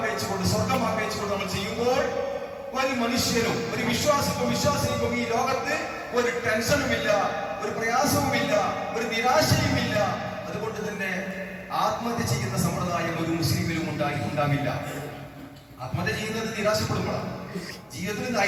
സ്വർഗം ആഗ്രഹിച്ചുകൊണ്ട് നമ്മൾ ചെയ്യുമ്പോൾ ഒരു മനുഷ്യനും ഒരു വിശ്വാസിക്കും ഈ ലോകത്ത് ഒരു ടെൻഷനുമില്ല, ഒരു പ്രയാസവുമില്ല, ഒരു നിരാശയുമില്ല. അതുകൊണ്ട് തന്നെ ആത്മഹത്യ ചെയ്യുന്ന സമ്പ്രദായം ഒരു മുസ്ലിമിലും ഉണ്ടാവില്ല. ആത്മഹത്യ ചെയ്യുന്നത് നിരാശപ്പെടുമ്പോഴാണ്, ജീവിതത്തിൽ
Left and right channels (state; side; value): identical; both; correlation 1.00